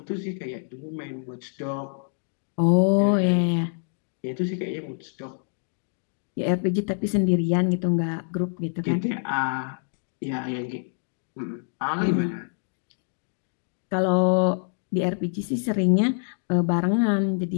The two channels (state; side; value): silent; right; digital silence